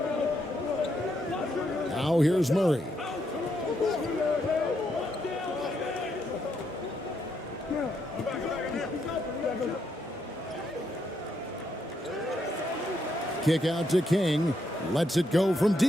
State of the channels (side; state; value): both; normal; correlation 0.78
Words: Now here's Murray. Kick out to King. Lets it go from